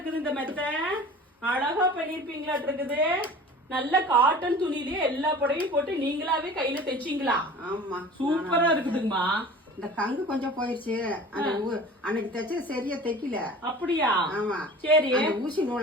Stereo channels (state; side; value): normal; both; correlation 0.41